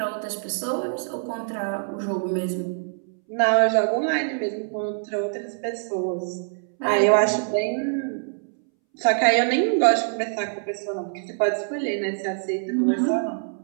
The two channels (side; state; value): left; silent; 62 dB below the other